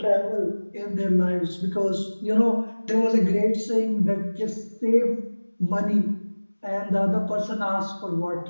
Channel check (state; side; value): inverted; both; correlation -1.00